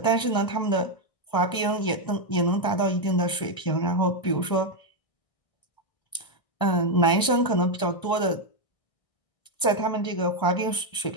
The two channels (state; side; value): late; right; 1.6 ms